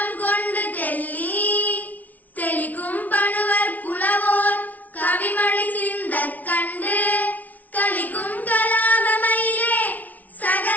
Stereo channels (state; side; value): late; right; 0.075 ms